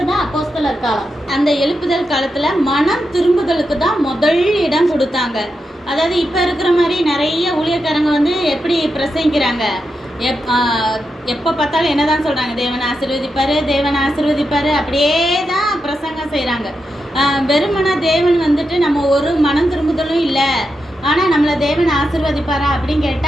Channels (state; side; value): normal; both; correlation 0.87